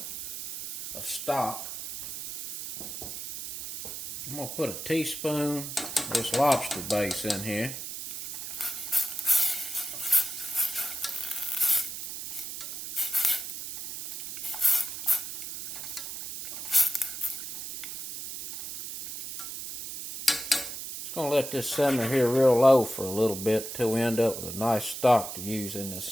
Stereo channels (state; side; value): noise; right; hiss, 7 dB below the sound